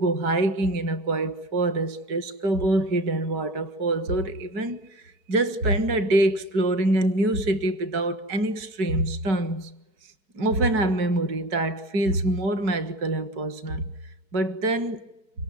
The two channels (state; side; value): late; left; 4.7 ms